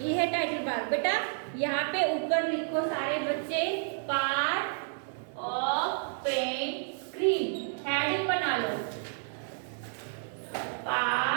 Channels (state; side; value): silent; left; digital silence